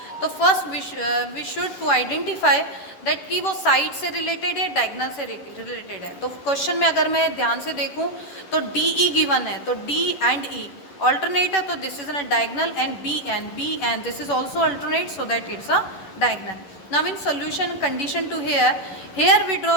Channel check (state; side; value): late; right; 11 ms